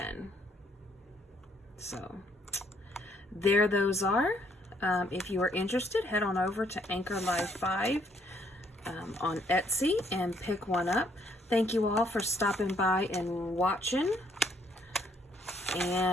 So there those are. If you are interested, head on over to Anchor Live 5 on Etsy and pick one up. Thank you all for stopping by and watching.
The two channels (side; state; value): both; normal; correlation 0.68